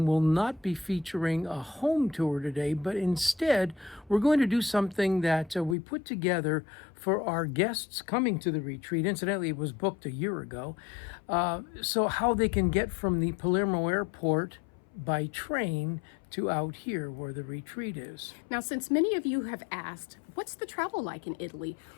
will not be featuring a home tour today. But instead, we're going to do something that we put together for our guests coming to the retreat. Incidentally, it was booked a year ago. So how they can get from the Palermo airport by train to out here where the retreat is. Now, since many of you have asked, what's the travel like in Italy?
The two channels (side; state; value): right; drops out; at 5.8 s